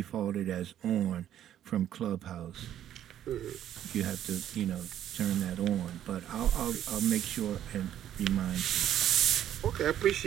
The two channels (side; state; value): left; quieter; 11.0 dB